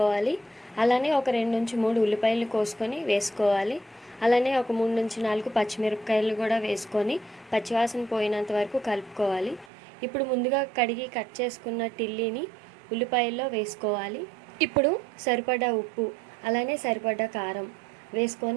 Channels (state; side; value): drops out; left; at 9.7 s